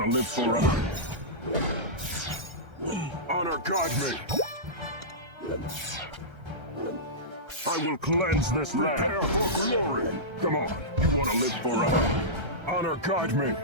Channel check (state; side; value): late; left; 1.3 ms